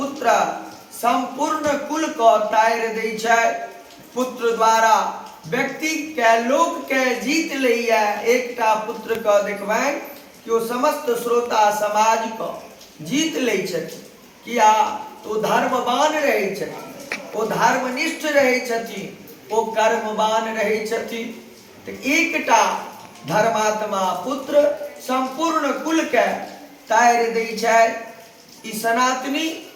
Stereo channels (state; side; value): identical; both; correlation 1.00